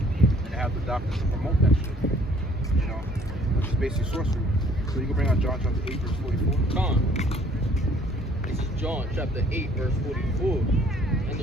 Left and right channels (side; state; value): both; normal; correlation 0.58